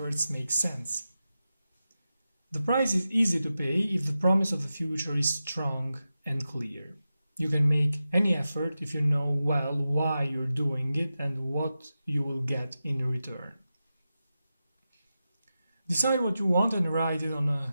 make sense. The price is easy to pay if the promise of the future is strong and clear. You can make any effort if you know well why you're doing it and what you will get in return. Decide what you want and write it on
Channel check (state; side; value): inverted; both; correlation -0.92